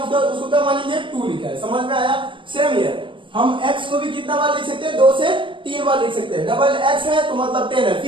क्या मानेंगे 2 लिखा है। समझ में आया? सेम हियर हम x को भी कितना बार लिख सकते हैं, 2 से 3 बार लिख सकते हैं। डबल x है तो मतलब 10 है,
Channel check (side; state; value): left; late; 0.24 ms